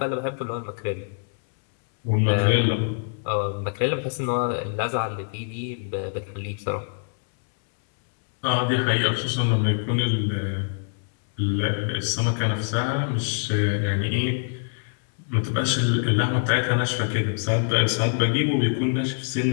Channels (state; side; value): silent; right; 62 dB below the other